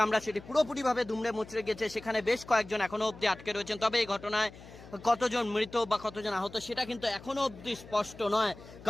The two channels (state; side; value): noise; left; hum, 18 dB below the sound